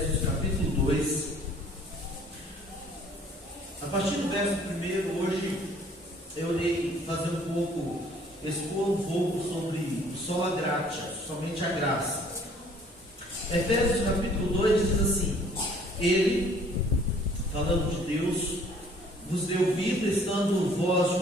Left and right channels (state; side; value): normal; both; correlation 0.57